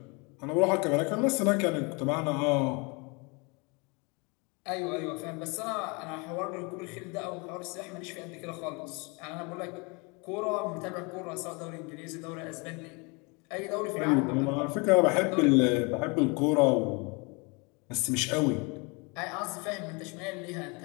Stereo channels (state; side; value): quieter; right; 30.0 dB